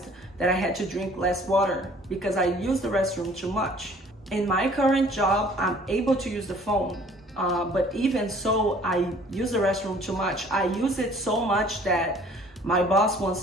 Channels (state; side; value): normal; both; correlation 0.54